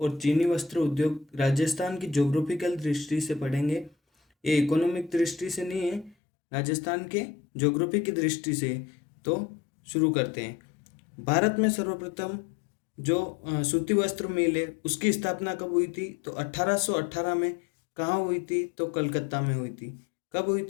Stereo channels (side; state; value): right; drops out; at 6.2 s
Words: चीनी वस्त्र उद्योग राजस्थान की ज्योग्राफिकल दृष्टि से पढ़ेंगे। ये इकोनॉमिक दृष्टि से नहीं है, राजस्थान के ज्योग्राफी की दृष्टि से। तो शुरू करते हैं। भारत में सर्वप्रथम जो सूती वस्त्र मिल है उसकी स्थापना कब हुई थी? तो 1818 में। कहाँ हुई थी? तो कलकत्ता में हुई थी। कब हुई